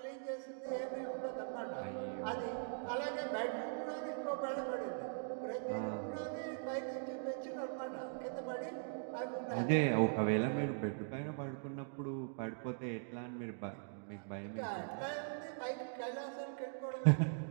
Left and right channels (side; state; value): left; silent; digital silence